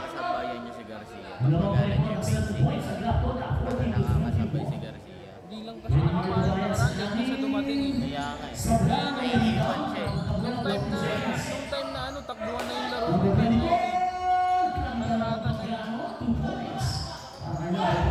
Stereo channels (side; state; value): both; identical; correlation 1.00